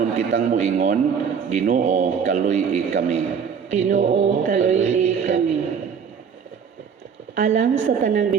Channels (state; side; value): quieter; left; 6.8 dB